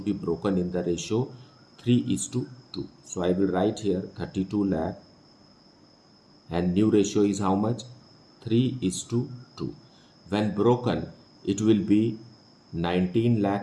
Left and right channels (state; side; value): identical; both; correlation 1.00